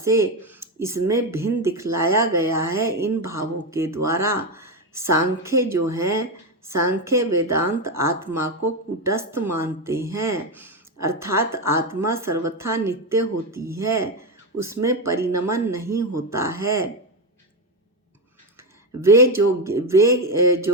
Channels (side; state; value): both; normal; correlation 0.10